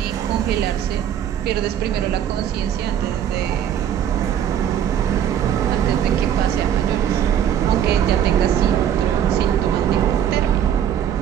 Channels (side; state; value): left; quieter; 9.8 dB